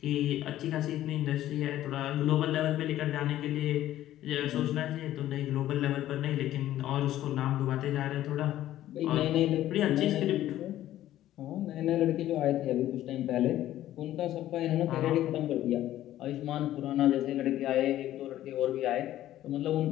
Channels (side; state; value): right; quieter; 13.4 dB